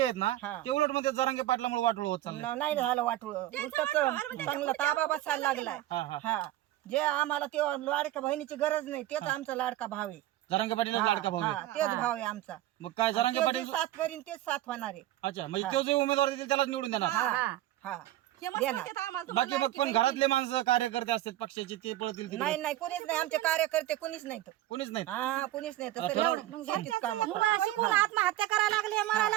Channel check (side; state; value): left; quieter; 14.6 dB